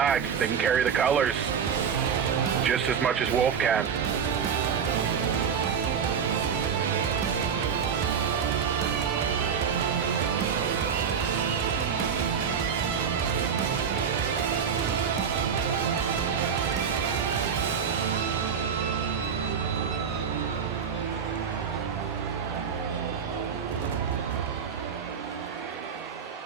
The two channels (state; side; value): quieter; left; 7.0 dB